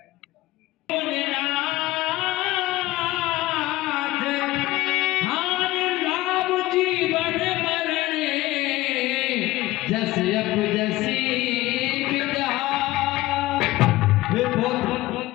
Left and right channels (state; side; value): quieter; right; 17.8 dB